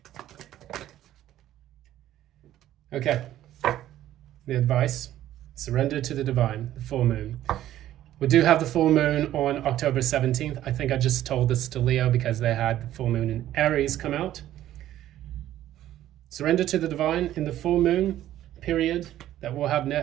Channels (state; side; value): quieter; left; 12.9 dB